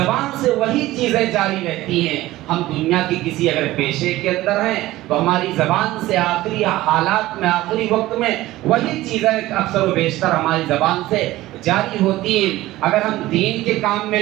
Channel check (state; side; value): quieter; left; 16.8 dB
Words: سے وہی چیزیں جاری رہتی ہیں۔ ہم دنیا کی کسی اگر پیشے کے اندر ہیں تو ہماری زبان سے آخری حالات میں، آخری وقت میں وہی چیزیں اکثر و بیشتر ہماری زبان سے جاری ہوتی ہیں۔ اگر ہم دین کے کام میں